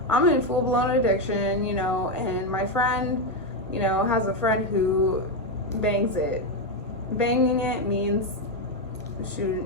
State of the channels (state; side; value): normal; both; correlation 0.06